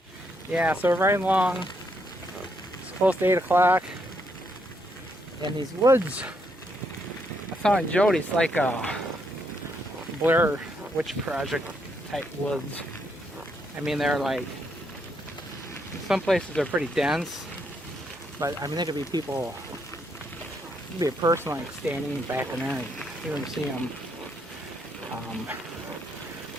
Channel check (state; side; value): normal; both; correlation 0.76